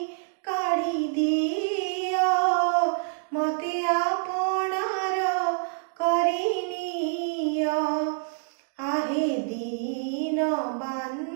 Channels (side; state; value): left; silent; 60 dB below the other